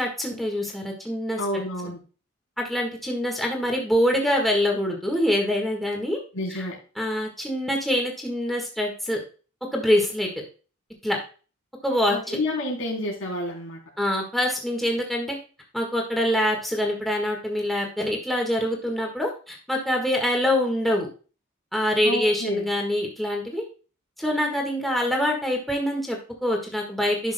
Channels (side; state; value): both; normal; correlation 0.70